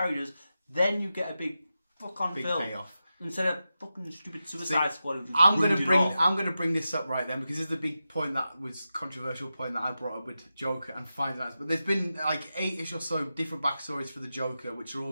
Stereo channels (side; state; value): both; inverted; correlation -0.91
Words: then you get a big fuck-on Big film. payoff. Instead of fucking stupid Suicide Squad. I'm gonna bring this up right then because this is the big point that was controversial point that I brought up with Joker and finding out. But there's been like 8-ish or so different backstories for the Joker, which are all